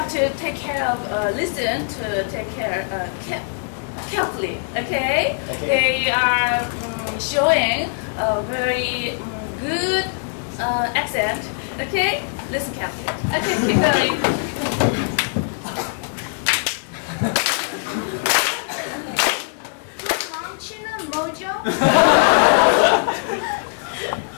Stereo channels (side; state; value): right; silent; digital silence